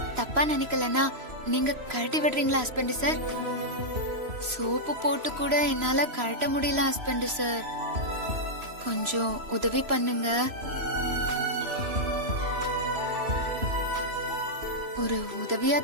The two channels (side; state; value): left; late; 3.0 ms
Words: தப்பா நினைக்கலன்னா நீங்க கழட்டி விடுறீங்களா ஹஸ்பண்ட் சார்? சோப்பு போட்டு கூட என்னால கழட்ட முடியல ஹஸ்பண்ட் சார். கொஞ்சம் உதவி பண்ணுங்க. ஒரு உதவியா